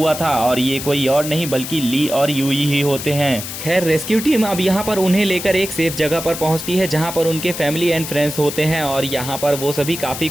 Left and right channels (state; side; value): noise; left; hiss, 8 dB below the sound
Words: था और ये कोई और नहीं बल्कि ली और यूई ही होते हैं। खैर रेस्क्यू टीम अब यहाँ पर उन्हें लेकर एक सेफ जगह पर पहुँचती है जहाँ पर उनके फैमिली एंड फ्रेंड्स होते हैं और यहाँ पर वो सभी काफी